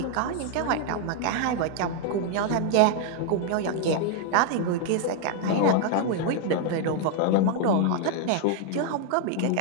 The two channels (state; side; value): different; both; correlation 0.00